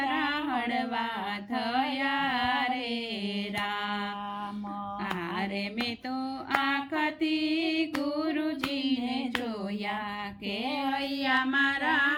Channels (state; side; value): identical; both; correlation 1.00